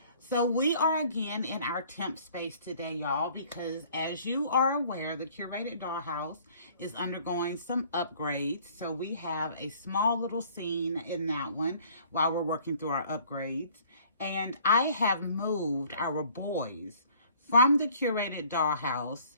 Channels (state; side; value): inverted; both; correlation -0.56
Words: So we are again in our temp space today, y'all, because as you are aware, the Curated Dollhouse is undergoing some upgrades. So we have a small little scene in that one while we're working through our upgrades. And I have moved our boys from the Curated Dollhouse